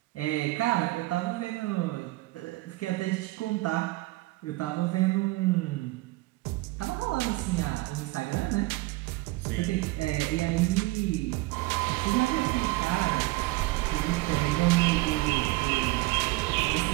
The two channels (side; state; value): left; quieter; 20.2 dB